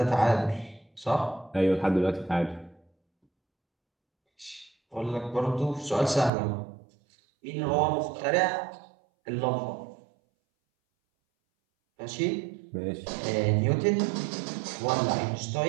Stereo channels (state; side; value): drops out; left; at 6.3 s